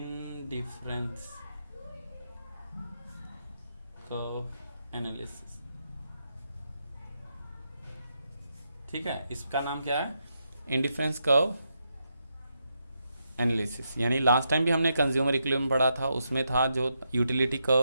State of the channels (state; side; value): inverted; both; correlation -0.82